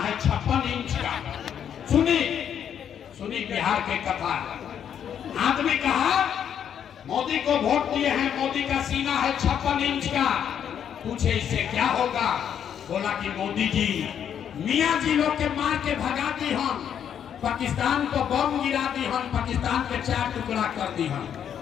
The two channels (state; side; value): quieter; right; 8.9 dB